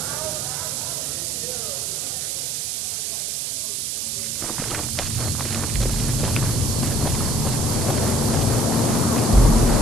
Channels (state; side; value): noise; right; hiss, 1 dB below the sound